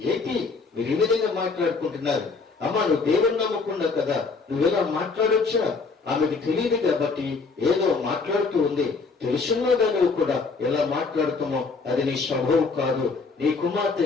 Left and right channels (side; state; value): right; quieter; 4.4 dB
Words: ఏంటి మీరు ఈ విధంగా మాట్లాడుకుంటున్నారు? అమ్మా నువ్వు దేవుని నమ్మకుండా కదా, నువ్వెలా మాట్లాడొచ్చా? ఆమెకు తెలియదు కాబట్టి ఏదో మాట్లాడుతూ ఉంది. తెలుసున్నదా నువ్వు కూడా ఎలా మాట్లాడుతామో అది నీ స్వభావం కాదు. నీ కుమార్తె